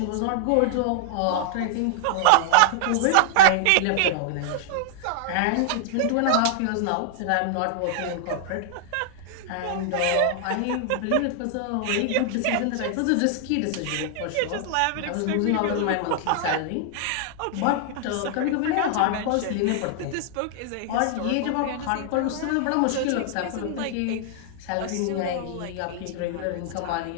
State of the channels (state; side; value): different; both; correlation -0.01